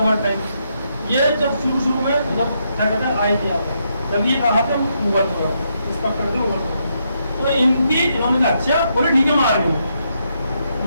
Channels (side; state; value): both; inverted; correlation -0.79